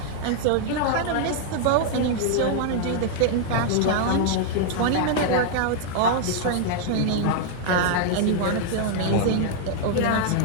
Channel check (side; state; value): both; different; correlation 0.00